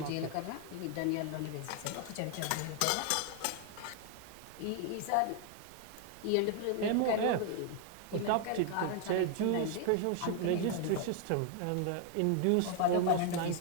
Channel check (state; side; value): different; both; correlation 0.00